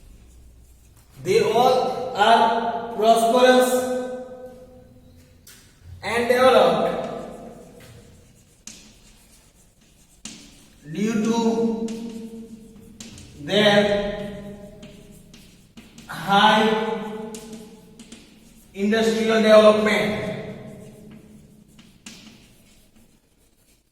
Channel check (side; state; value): both; identical; correlation 1.00